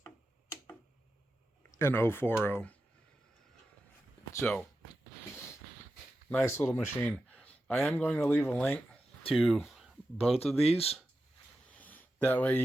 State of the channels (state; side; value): normal; both; correlation 0.91